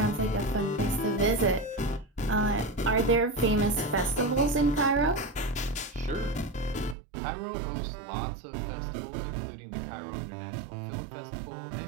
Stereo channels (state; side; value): drops out; left; at 7.0 s